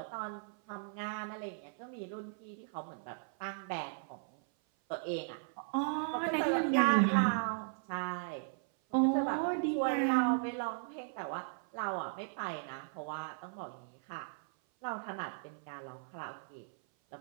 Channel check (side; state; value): left; silent; 53 dB below the other